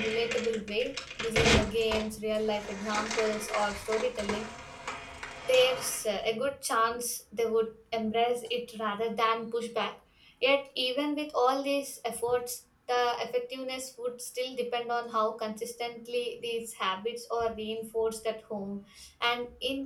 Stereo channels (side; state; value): both; identical; correlation 1.00